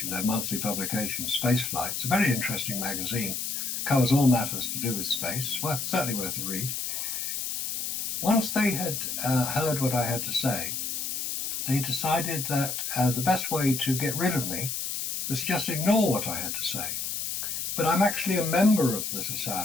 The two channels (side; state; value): left; noise; hiss, 3 dB below the sound